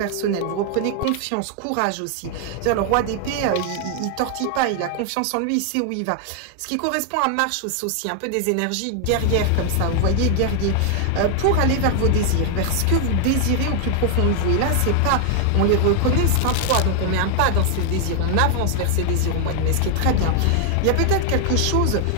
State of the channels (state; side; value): different; both; correlation 0.00